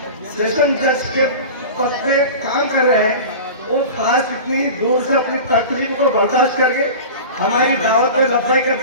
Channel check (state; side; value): inverted; both; correlation -0.33